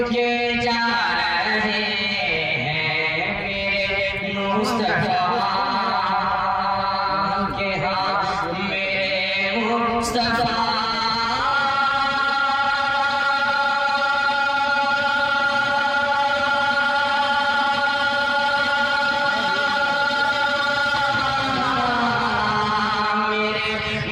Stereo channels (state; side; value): identical; both; correlation 1.00